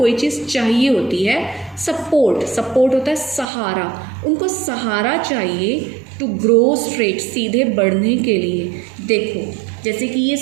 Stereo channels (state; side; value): drops out; left; at 3.5 s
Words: चीज़ चाहिए होती है. सपोर्ट, सपोर्ट होता है सहारा. उनको सहारा चाहिए टू ग्रो स्ट्रेट, सीधे बढ़ने के लिए. देखो जैसे कि ये